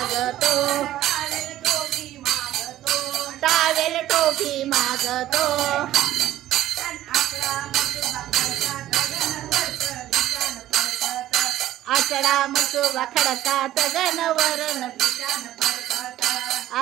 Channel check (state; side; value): quieter; left; 13.6 dB